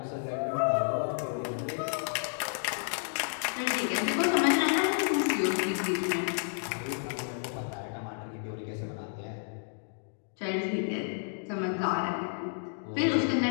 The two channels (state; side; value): silent; right; digital silence